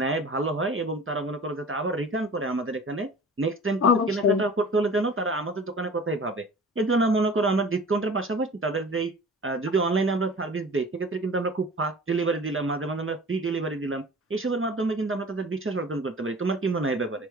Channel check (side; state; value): both; normal; correlation 0.42